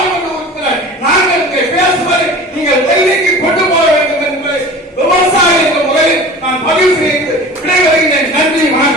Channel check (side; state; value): both; normal; correlation 0.39